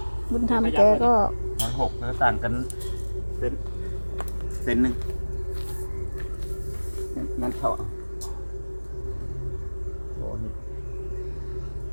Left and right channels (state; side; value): inverted; both; correlation -1.00